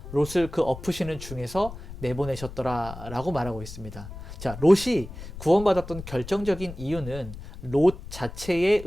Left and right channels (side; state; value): left; noise; rumble, 12 dB below the sound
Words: 롯을 그 엎으시는 중에서 내보내셨더라 라고 말하고 있습니다. 자, 롯이 구원받았던 결정적인 이유는 롯 자체의